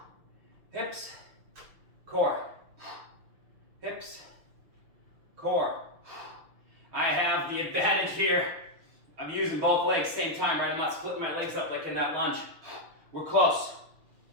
Hips, core. Hips, core. I have the advantage here. I'm using both legs same time, right? I'm not splitting my legs up like in that lunge. We're close.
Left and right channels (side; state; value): left; late; 6.3 ms